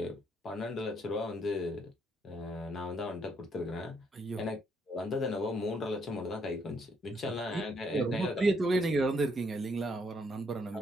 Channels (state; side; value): normal; both; correlation 0.72